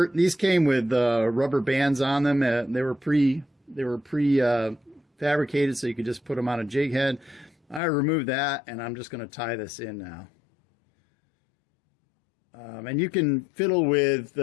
These came with rubber bands on them. They were pre fabricated, so you could just put them on a jig head. I removed that, and I'm just going to tie this in now. And you can fiddle with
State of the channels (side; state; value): right; drops out; at 7.8 s